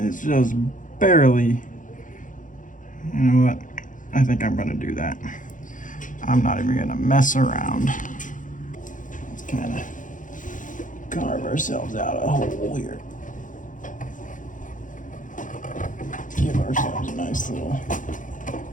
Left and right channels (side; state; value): right; late; 0.38 ms